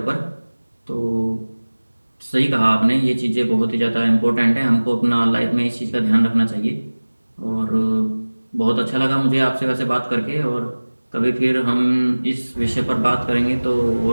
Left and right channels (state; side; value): inverted; both; correlation -1.00